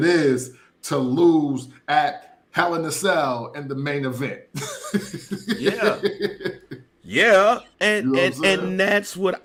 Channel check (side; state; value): both; identical; correlation 1.00